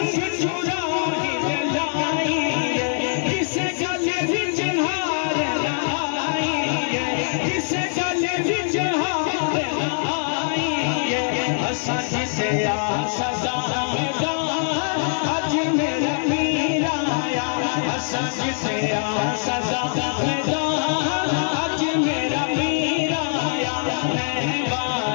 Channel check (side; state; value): right; silent; 64 dB below the other